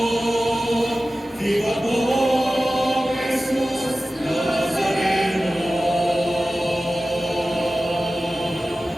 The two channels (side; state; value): both; normal; correlation 0.95